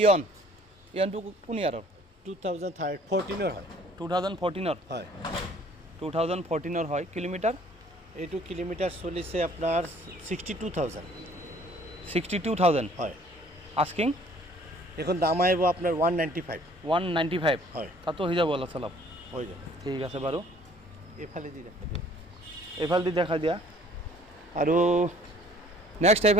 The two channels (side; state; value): both; normal; correlation 0.56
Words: কোন ইয়াৰৰ 2014 হয় 2014 হয় 2014 হয় কিলোমিটাৰ এইটো কিলোমিটাৰ চলিছে আপোনাৰ 62,000 হয় আস্কিং এখন দাম আহিব আপোনাৰ 195 হয় তাতো হৈ যাব অলপ চলপ হৈ যাব ঠিক আছে বাৰু এইফালে দি দেখা এইফালেদি দেখা দিয়া আৰু নেক্সট